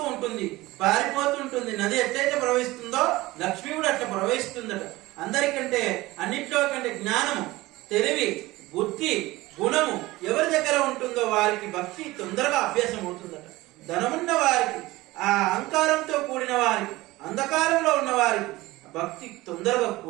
ఉంటుంది, పారిపోతూ ఉంటుంది। నది ఎట్లయితే ప్రవహిస్తుందో లక్ష్మి కూడా అట్లా ప్రవహిస్తుందట। అందరికంటే అన్నిట్లో కంటే జ్ఞానము తెలివి బుద్ధి గుణము ఎవరి దగ్గర ఉంటుందో వారికి భక్తి తొందరగా అభ్యాసం అవుతుందట। ధనమున్న వారికి ఆ అహంకారంతో కూడిన వారికి అంధకారంలో ఉన్న వారికి భక్తి తొందరగా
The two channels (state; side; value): quieter; left; 19.3 dB